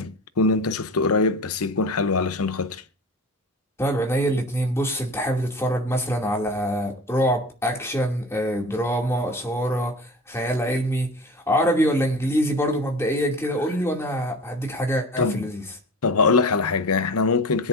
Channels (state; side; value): normal; both; correlation 0.34